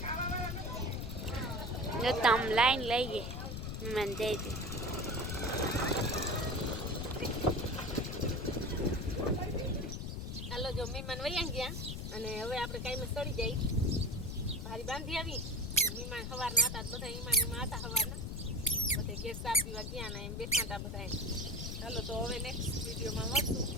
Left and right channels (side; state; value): left; noise; rumble, 5 dB below the sound